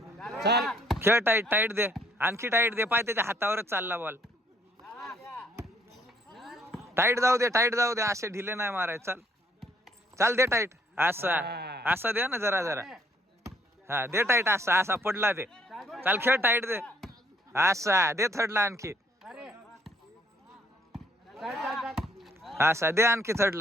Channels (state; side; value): normal; both; correlation 0.66